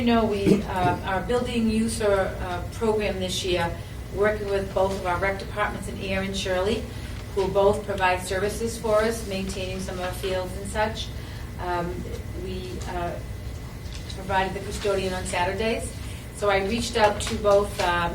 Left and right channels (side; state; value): both; identical; correlation 1.00